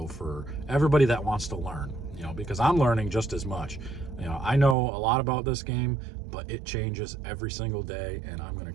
for everybody that wants to learn, because I'm learning just as much. I know a lot about this game, but it changes every single day, and I'm going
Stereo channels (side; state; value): left; drops out; at 4.8 s